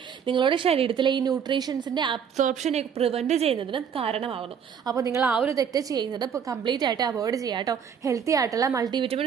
നിങ്ങളുടെ ശരീരത്തിലെ ഈ ന്യൂട്രീഷൻസിന്റെ അബ്സോർപ്ഷനെ പ്രിവെന്റ് ചെയ്യുന്നതിനും കാരണമാകുന്നു. അപ്പോൾ നിങ്ങൾ ആ ഒരു തെറ്റ് ചെയ്യുന്നത് കംപ്ലീറ്റ് ആയിട്ട് അവോയ്ഡ് ചെയ്യുക കേട്ടോ. ഹെൽത്തി ആയിട്ടുള്ള മൾട്ടി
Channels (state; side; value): quieter; left; 7.5 dB